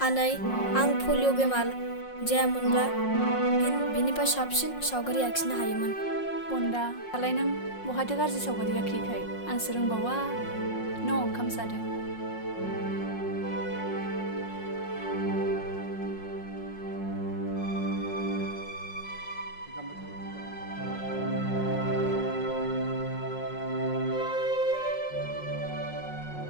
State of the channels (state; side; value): late; right; 5.5 ms